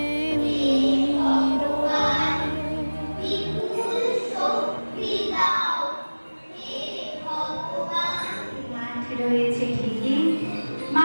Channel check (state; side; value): inverted; both; correlation -1.00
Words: মাঠ রয়েছে ঠিকই,